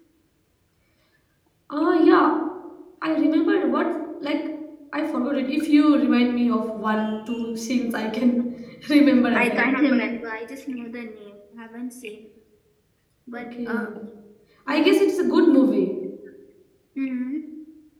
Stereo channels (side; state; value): both; identical; correlation 1.00